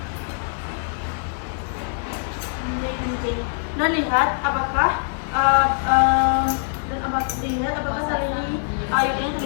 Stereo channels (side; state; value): right; silent; digital silence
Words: lihat apakah lihat apakah tali IUD ini